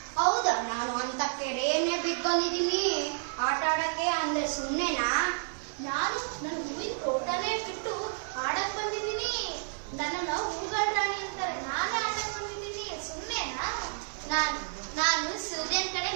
ಹೌದಾ? ನಾನು ಅಂತ ಕೆರೆಯನ್ನೇ ಬಿಟ್ಟು ಬಂದಿದ್ದೀನಿ ಆಟ ಆಡಕ್ಕೆ. ಅಂದ್ರೆ ಸುಮ್ಮನೆನಾ? ನಾನು ನನ್ನ ಹೂವಿನ ತೋಟನೇ ಬಿಟ್ಟು ಆಡಕ್ ಬಂದಿದ್ದೀನಿ. ನನ್ನನ್ನ ಹೂಗಳ ರಾಣಿ ಅಂತಾರೆ, ನಾನೇ ಆಡಕ್ ಬಂದಿದ್ದೀನಿ. ಸುಮ್ಮನೆನಾ? ನಾನು ಸೂರ್ಯನ ಕಡೆ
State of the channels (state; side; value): silent; left; digital silence